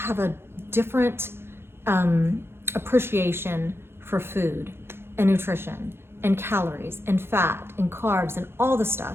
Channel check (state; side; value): late; left; 0.11 ms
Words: a different appreciation for food and nutrition and calories and fat and carbs and all the